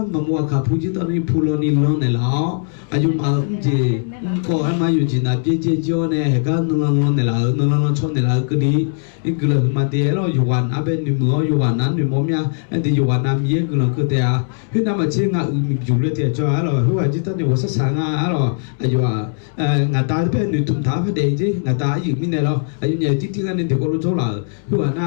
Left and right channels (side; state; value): right; silent; 67 dB below the other